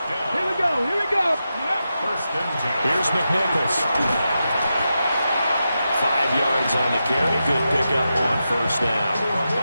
we go, here we go. First and 10. Here's McNichols. 5 yards on the carry. Good pickup on first down.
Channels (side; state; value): both; inverted; correlation -0.89